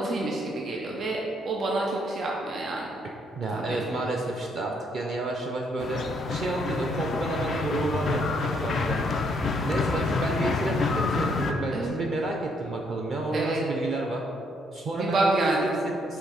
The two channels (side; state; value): both; normal; correlation 0.71